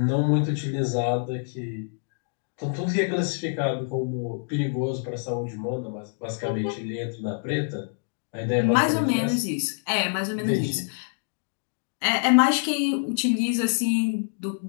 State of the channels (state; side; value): silent; right; digital silence